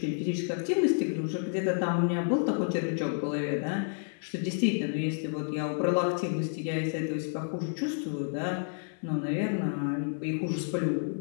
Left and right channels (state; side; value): silent; right; digital silence